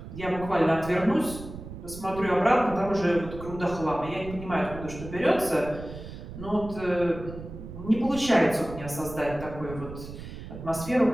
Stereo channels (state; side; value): noise; right; rumble, 12 dB below the sound